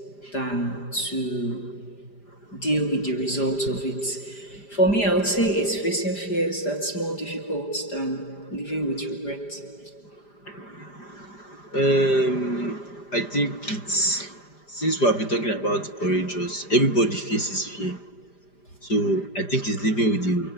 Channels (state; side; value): late; right; 5.0 ms